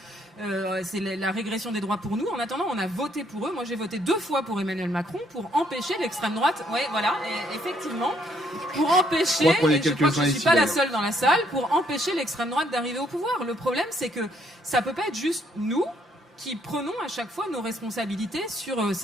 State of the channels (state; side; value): normal; both; correlation 0.69